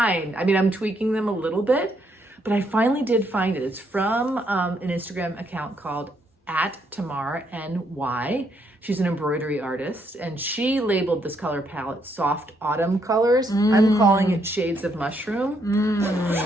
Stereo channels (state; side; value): normal; both; correlation 0.74